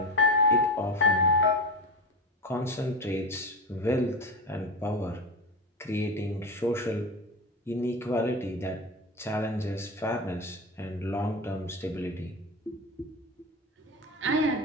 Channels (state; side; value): normal; both; correlation 0.22